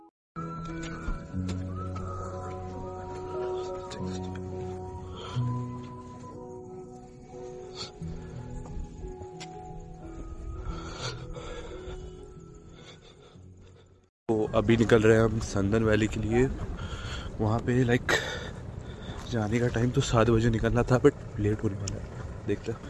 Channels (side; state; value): both; identical; correlation 1.00